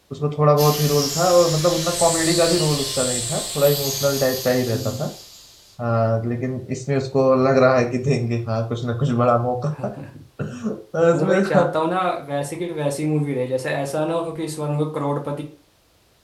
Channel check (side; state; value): both; identical; correlation 1.00